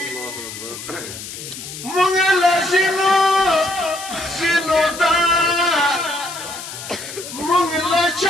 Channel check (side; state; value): left; noise; hiss, 11 dB below the sound